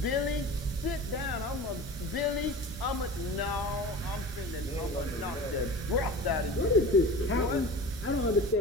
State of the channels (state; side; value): normal; both; correlation 0.35